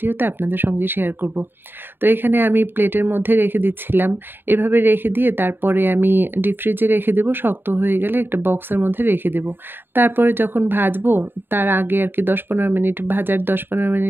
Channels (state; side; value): late; left; 0.099 ms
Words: আপনাদের সঙ্গে শেয়ার করব। তো এখানে আমি প্লেটের মধ্যে রেখে দিচ্ছিলাম। এভাবে রেখে দিয়ে তারপরে আমি ডিপ ফ্রিজে রেখে দেব। শক্ত হয়ে গেলে একটা বক্সের মধ্যে রেখে দেব। তারপরে যখন ভাজবো তার আগে আরকি ১০-১৫ মিনিট, ভাজার ১০-১৫